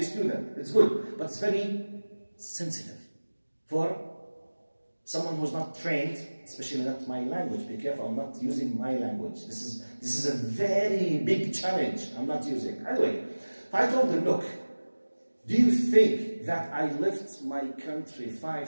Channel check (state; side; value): inverted; both; correlation -1.00